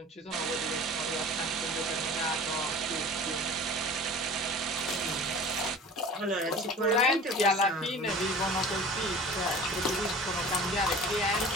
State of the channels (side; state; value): both; normal; correlation 0.41